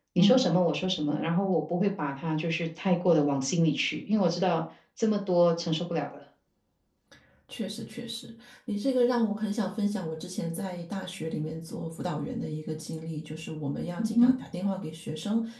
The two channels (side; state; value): both; identical; correlation 1.00